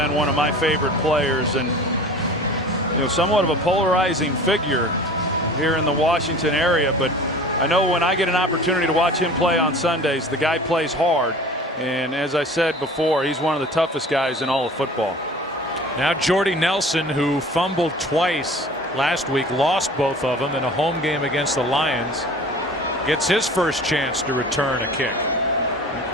one of my favorite players, and somewhat of a polarizing figure here in the Washington area. But I know when I get an opportunity to watch him play on Sundays, the guy plays hard, and as I said before, he's one of the toughest guys in all of football. Now Jordy Nelson, who fumbled twice last week, lost both of them in a home game against the Lions, gets his first chance to return a kick. I think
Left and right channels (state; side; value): normal; both; correlation 0.42